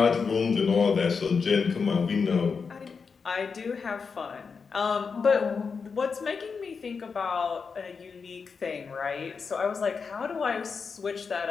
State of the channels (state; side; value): quieter; right; 5.4 dB